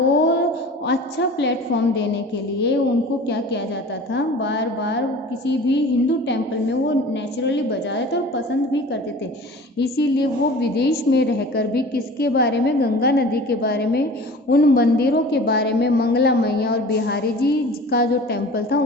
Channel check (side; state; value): both; normal; correlation 0.41